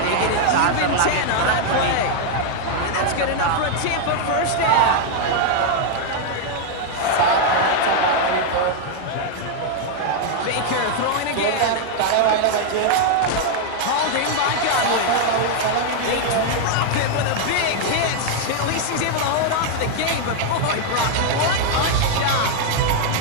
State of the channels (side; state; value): both; different; correlation 0.00